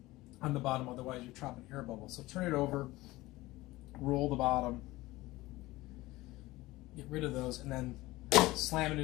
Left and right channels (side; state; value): right; quieter; 19.0 dB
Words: on the bottom, otherwise you're trapping air bubbles. So turn it over, roll the bottom, get rid of those, and then slam it